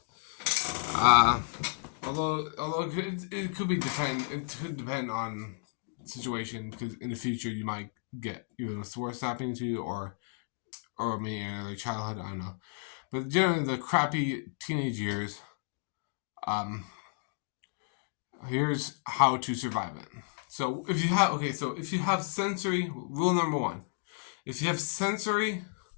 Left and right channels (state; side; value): silent; right; digital silence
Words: Although it could depend on the situation, because in the future you might get either the worst happening to you or maybe another childhood. I don't know, but generally the crappy teenage years. Here's how to survive it. So if you have sensory, rule number one, if you have sensory